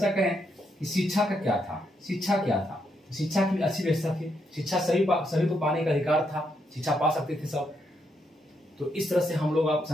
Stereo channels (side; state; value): both; normal; correlation 0.78